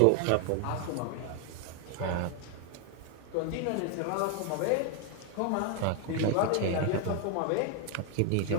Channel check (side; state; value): both; different; correlation 0.01